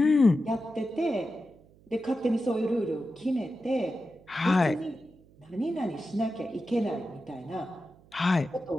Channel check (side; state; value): right; noise; hum, 27 dB below the sound